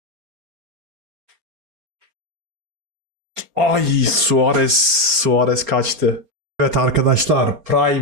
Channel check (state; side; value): late; left; 4.3 ms